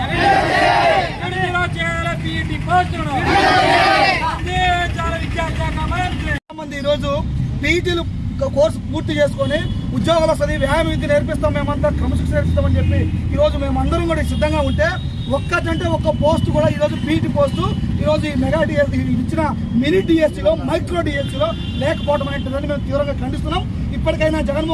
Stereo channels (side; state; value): both; identical; correlation 1.00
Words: విడుదల చేయాలి బీటీ పోస్టులను చాలా విద్యాశాఖ మంత్రి ఈరోజు పీటీలు కోర్సు పూర్తి చేసుకొని ఉద్యోగాలు వస్తుంది వ్యాయామ విద్య నేర్పిస్తాం, మేమంతా క్రమశిక్షణ నేర్పిస్తామని చెప్పి ఈరోజు మేమందరం కూడా సిద్ధంగా ఉంటే ఒక్కటంటే ఒక్క పోస్ట్ కూడా ఈరోజు పీటీ పోస్టు ఈరోజు ఈ మెగా డిఎస్సీ ఇచ్చిన మినీ డిఎస్సీలో మైక్రో డిఎస్సీలో లేకపోవడం అనేటువంటిదని మేము తీవ్రంగా ఖండిస్తున్నాం. ఇప్పటికైనా